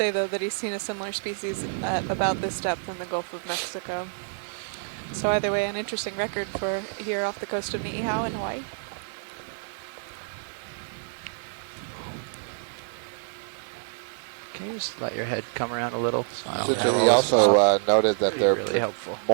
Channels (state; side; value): silent; left; digital silence